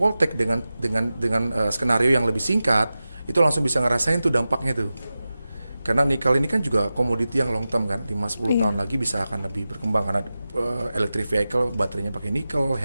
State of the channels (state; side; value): inverted; both; correlation -0.94